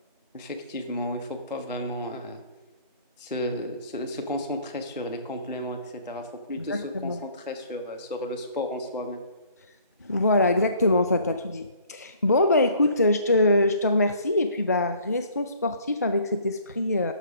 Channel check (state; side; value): inverted; both; correlation -0.56